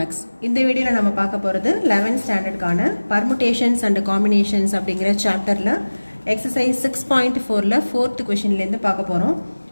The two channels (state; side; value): inverted; both; correlation -1.00